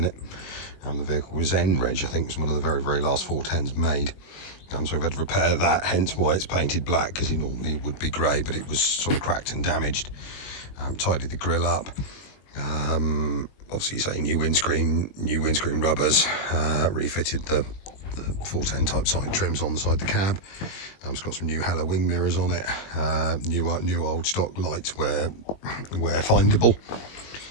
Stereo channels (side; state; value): right; late; 21 ms